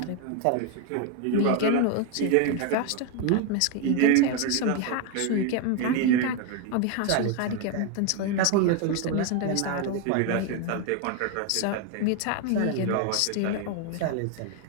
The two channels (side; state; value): both; different; correlation 0.01